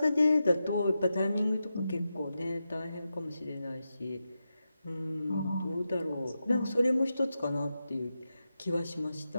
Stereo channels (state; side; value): inverted; both; correlation -0.89